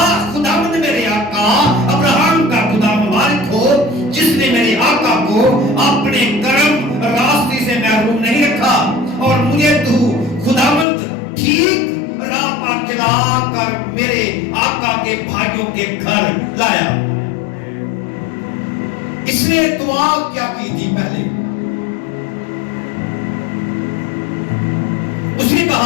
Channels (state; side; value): drops out; right; at 10.9 s